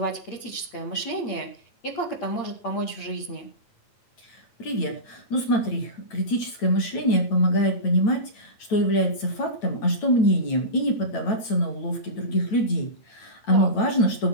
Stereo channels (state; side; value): late; right; 9.1 ms